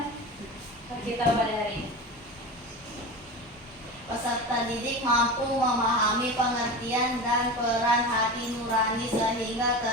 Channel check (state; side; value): normal; both; correlation 0.28